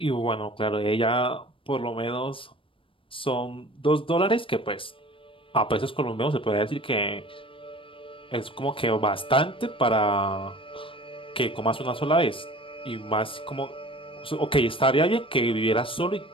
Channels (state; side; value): late; right; 0.25 ms